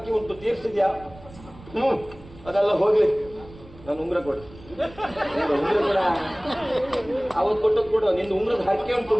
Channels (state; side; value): noise; right; rumble, 20 dB below the sound